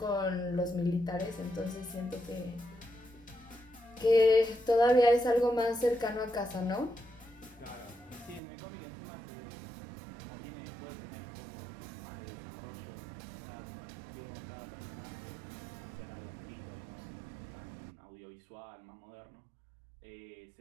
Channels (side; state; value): left; drops out; at 8.4 s